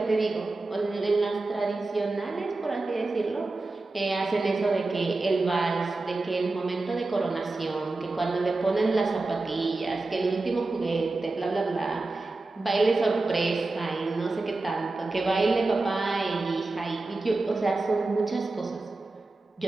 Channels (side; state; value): left; quieter; 3.3 dB